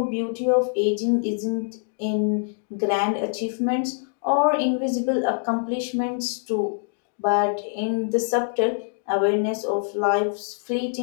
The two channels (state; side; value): silent; right; digital silence